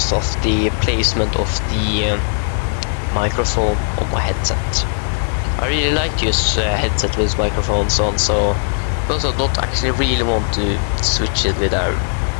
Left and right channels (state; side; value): silent; right; digital silence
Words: of the placement of the microphone on my headset. I really like to use headset with microphones on, so because I don't actually really want to switch it with a